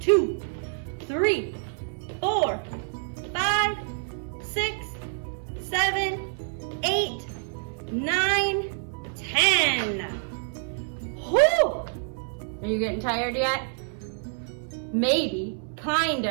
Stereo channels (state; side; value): silent; left; 60 dB below the other